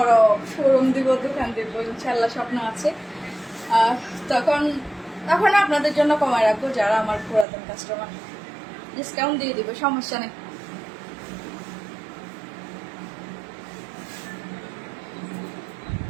শোরুম দিব, দোকান দিব, ইনশাল্লাহ স্বপ্ন আছে, তখন আপনাদের জন্য কমায় রাখবো। যারা আমার পুরাতন কাস্টমার, ডিসকাউন্ট দিয়ে দিব, সমস্যা নেই।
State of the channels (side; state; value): left; drops out; at 7.5 s